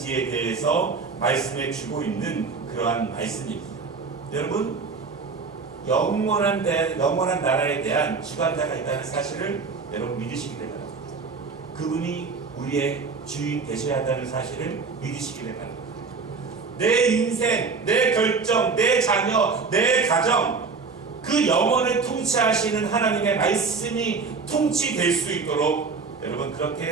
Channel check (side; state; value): left; quieter; 4.8 dB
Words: 대해서 말씀해 주고 있는 그러한 말씀입니다. 여러분, 영원한 나라에 대한 주관자가 있다는 사실을 여러분 믿으시기 바랍니다. 그분이 우리의 주인 되셔야 한다는 사실을 믿으시기 바랍니다. 내 인생, 내 결정, 내 자녀, 내 가정, 그 영혼을 통치하시는 하나님의 말씀이 통치될 수 있도록 여러분